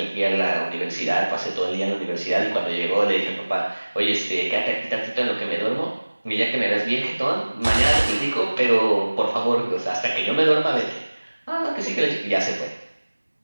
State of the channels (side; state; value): both; inverted; correlation -1.00